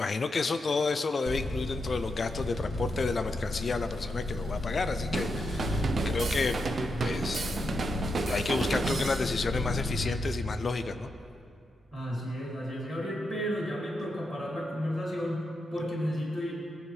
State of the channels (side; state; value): both; normal; correlation 0.85